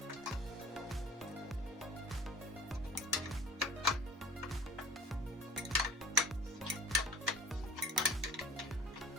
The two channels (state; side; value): normal; both; correlation 0.43